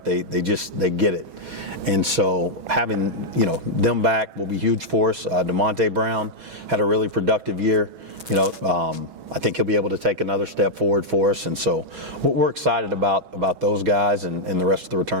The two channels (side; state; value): left; late; 6.2 ms